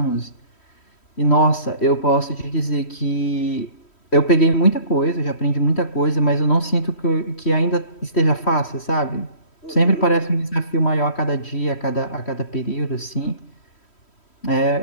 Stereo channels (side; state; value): right; late; 3.1 ms